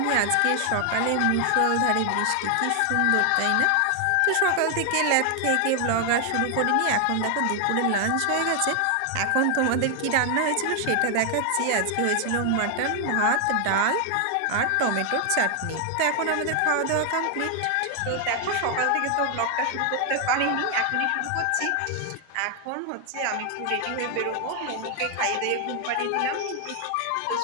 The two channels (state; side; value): different; both; correlation 0.00